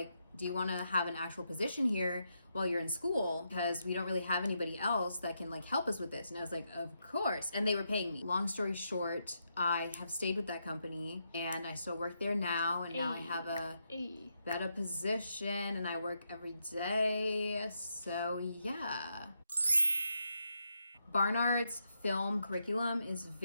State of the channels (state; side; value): inverted; both; correlation -0.81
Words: do you want to have an actual position here while you're in school? Because we don't really have anybody else that can like help us with this. And I was like, of course. And they were paying me. Long story short, I have stayed with that company and I still work there now. And now I have a better position and I work every day. So yeah. Barnard's film curriculum is